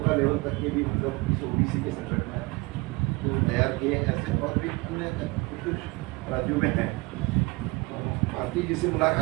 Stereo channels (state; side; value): quieter; left; 25.0 dB